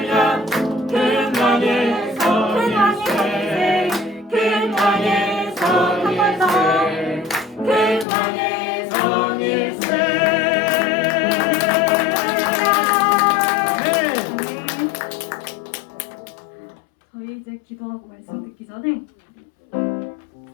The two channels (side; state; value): right; drops out; at 8.1 s